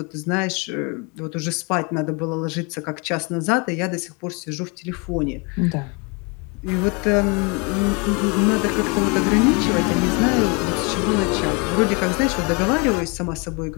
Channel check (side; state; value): right; quieter; 31.5 dB